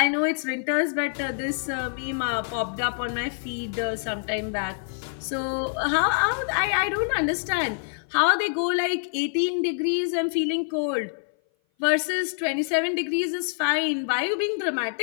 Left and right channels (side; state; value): right; silent; 57 dB below the other